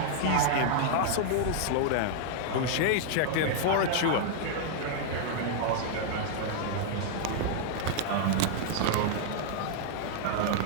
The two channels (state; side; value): different; both; correlation -0.01